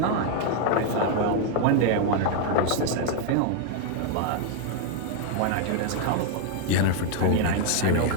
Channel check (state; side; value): different; both; correlation 0.00